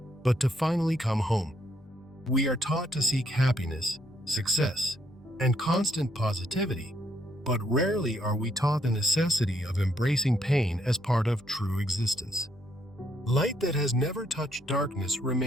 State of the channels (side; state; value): both; normal; correlation 0.73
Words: but to finally come home. We are taught to seek happiness, success, and constant positivity, but rarely are we taught the necessity of embracing pain as part of true existence. Light that has never touched darkness